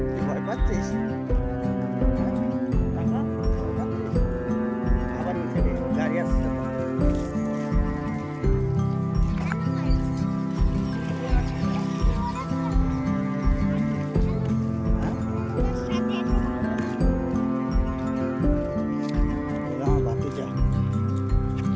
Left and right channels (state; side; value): identical; both; correlation 1.00